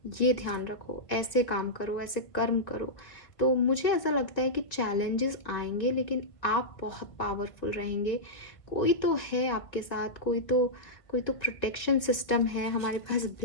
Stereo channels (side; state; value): right; late; 1.8 ms